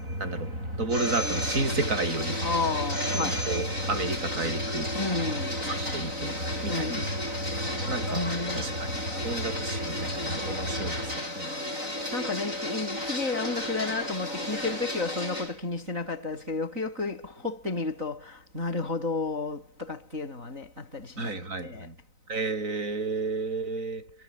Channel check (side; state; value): left; late; 3.9 ms